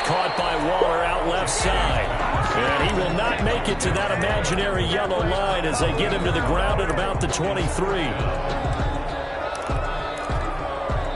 caught by Waller out left side. And he will not make it to that imaginary yellow line as they get him to the ground at about the 23.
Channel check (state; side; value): identical; both; correlation 1.00